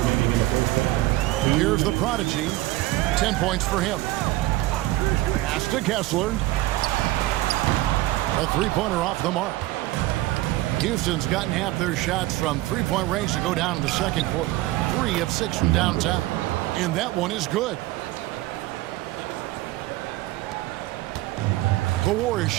Here's the Prodigy. 10 points for him. Pass to Kessler. A three-pointer off the mark. Houston's gotten half their shots from three-point range to go down in the second quarter. 3 of 6 from downtown. And that one is good. The Warriors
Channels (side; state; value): left; quieter; 17.6 dB